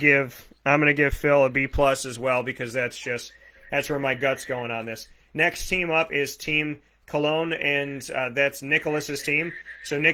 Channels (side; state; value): both; identical; correlation 1.00